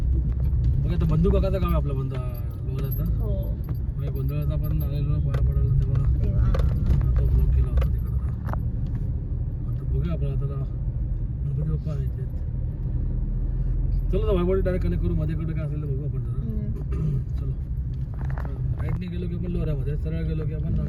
बघा आता बंधू काकाचं काम आहे आपलं लोऱ्याचं. हो म्हणजे गोंधळाचा आपण आलेलो पाया पडायला तेव्हा तेव्हा तो ब्लॉक केला होता तिकडं. आता बघूया आपण आता गणपती बाप्पा आहे ते. चलो ना वैभवडी डायरेक्ट कनेक्ट करू. मध्ये काय असेल तर बघू आपण जरा. चलो राईटने गेलो की आपण लोऱ्यामध्ये, सरळ गेलो की आपण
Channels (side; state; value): both; identical; correlation 1.00